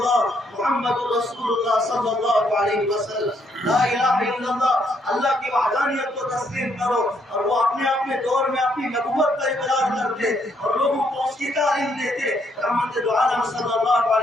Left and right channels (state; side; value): normal; both; correlation 0.72